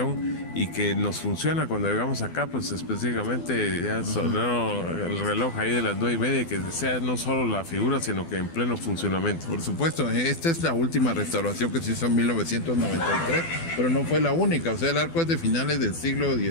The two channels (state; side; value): late; right; 12 ms